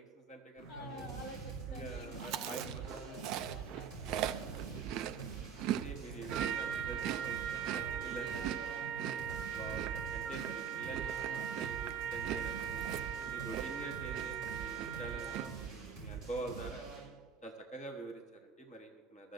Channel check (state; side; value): quieter; left; 7.1 dB